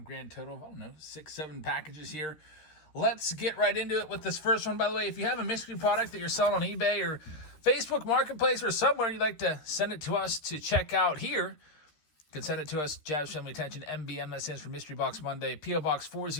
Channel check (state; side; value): late; right; 13 ms